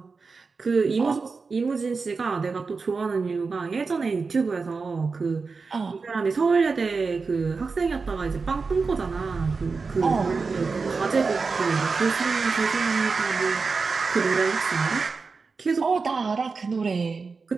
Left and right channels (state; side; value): quieter; left; 4.5 dB